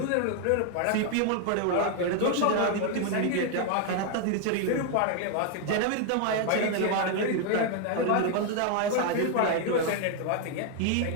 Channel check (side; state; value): both; different; correlation 0.00